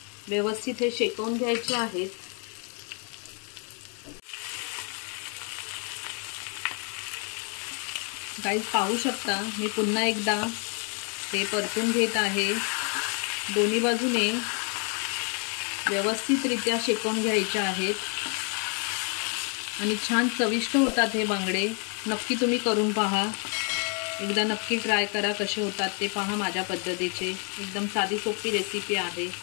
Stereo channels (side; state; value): right; quieter; 38.3 dB